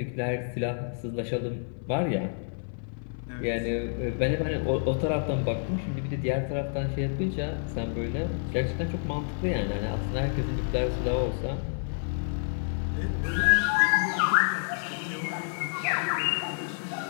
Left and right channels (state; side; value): silent; right; digital silence